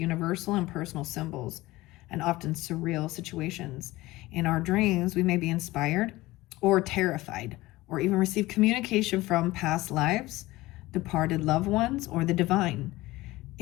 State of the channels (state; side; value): quieter; right; 18.9 dB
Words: and personal symbols and often surreal situations. In our dreams, we may be inspired or terrified or even receive communication from past lives, departed loved ones, or the divine.